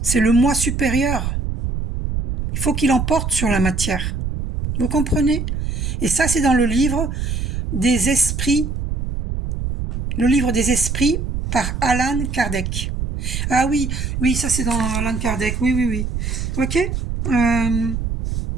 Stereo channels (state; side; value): noise; right; rumble, 3 dB below the sound